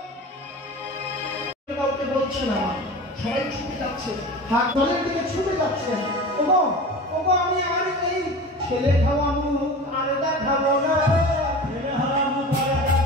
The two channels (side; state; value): both; normal; correlation 0.34